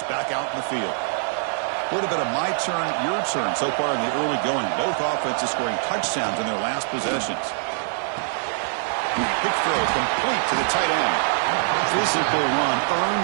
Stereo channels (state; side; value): silent; left; digital silence